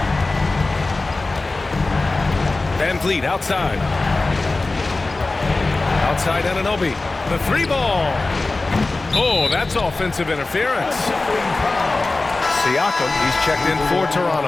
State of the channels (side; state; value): right; quieter; 3.3 dB